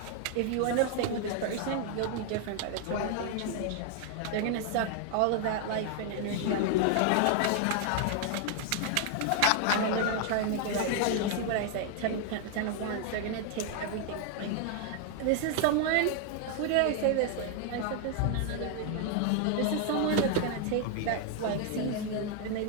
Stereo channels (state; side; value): different; both; correlation 0.00